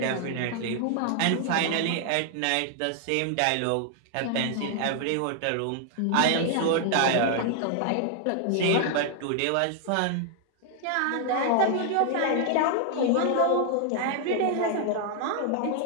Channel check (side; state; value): both; different; correlation 0.00